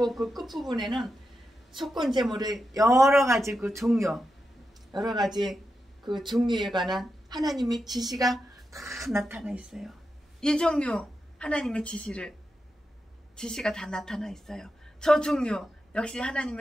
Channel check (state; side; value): normal; both; correlation 0.88